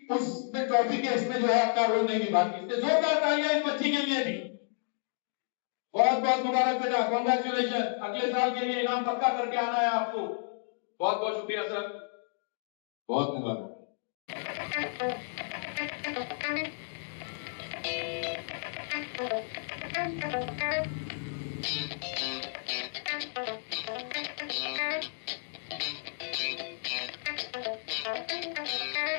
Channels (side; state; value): right; silent; digital silence